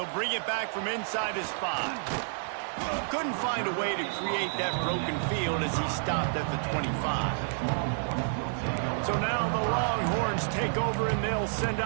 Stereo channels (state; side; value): silent; left; 58 dB below the other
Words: bring it back from inside his 5. Couldn't find a way to create that broken field as he stopped at the 25. So now the Longhorns take over and they'll send